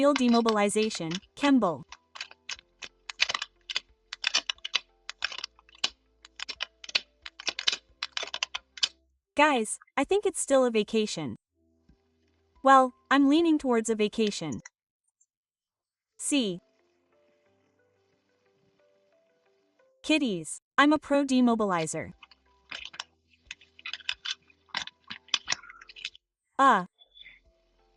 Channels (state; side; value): identical; both; correlation 1.00